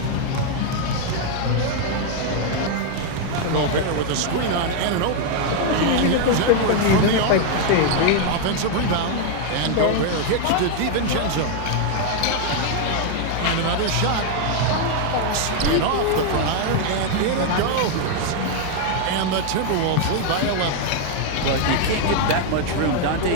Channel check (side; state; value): both; different; correlation 0.00